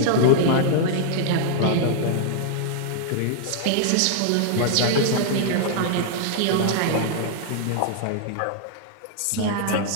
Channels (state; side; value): different; both; correlation -0.01